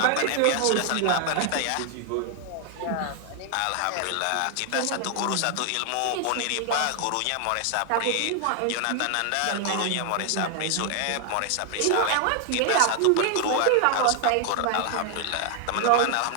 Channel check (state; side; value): different; both; correlation 0.00